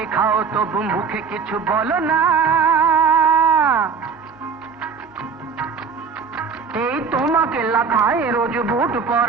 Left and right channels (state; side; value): quieter; left; 5.7 dB